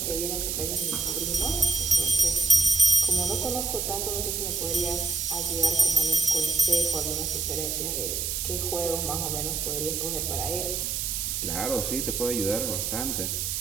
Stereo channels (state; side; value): noise; right; hiss, 1 dB below the sound